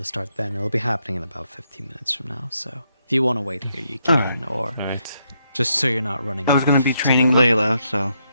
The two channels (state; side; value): inverted; both; correlation -0.78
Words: start then. It'll be happening in about 15 minutes from now, so if you want to wait here, you can, or just so you're not running I was going to be training Layla, so